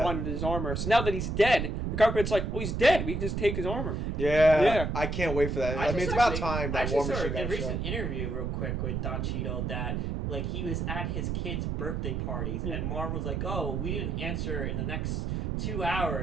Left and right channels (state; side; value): noise; right; rumble, 1 dB below the sound